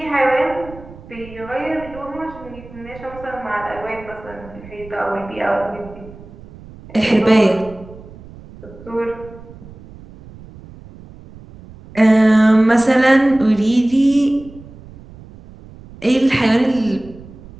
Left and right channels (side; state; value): right; noise; rumble, 19 dB below the sound